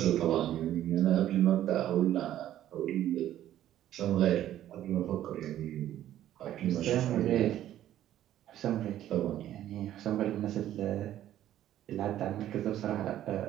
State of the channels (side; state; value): left; quieter; 12.3 dB